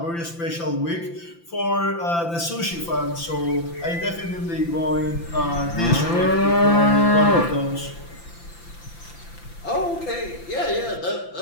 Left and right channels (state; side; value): late; right; 5.9 ms